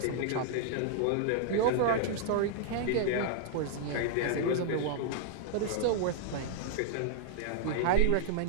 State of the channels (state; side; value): different; both; correlation -0.01